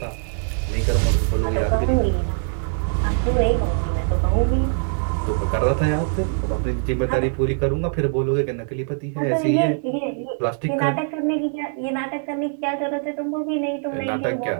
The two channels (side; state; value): left; silent; digital silence